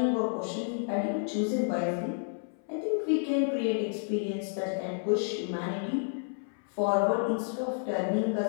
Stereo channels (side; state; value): right; silent; 57 dB below the other